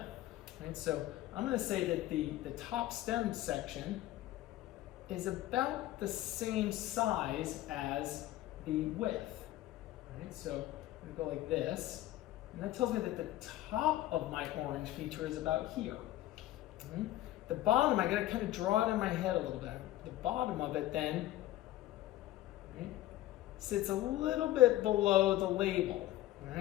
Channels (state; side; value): quieter; right; 14.9 dB